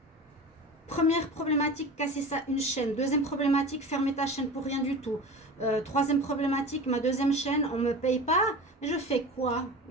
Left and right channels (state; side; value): normal; both; correlation 0.33